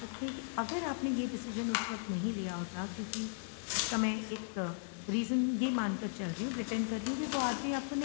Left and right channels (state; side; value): silent; right; digital silence